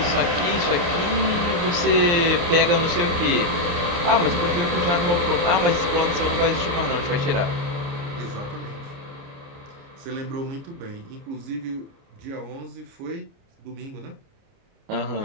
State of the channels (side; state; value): left; late; 29 ms